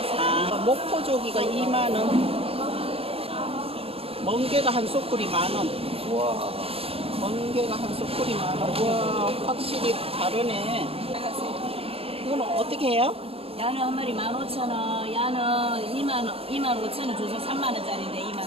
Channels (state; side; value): late; left; 0.28 ms